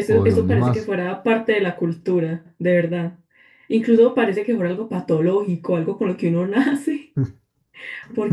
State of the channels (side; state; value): both; identical; correlation 1.00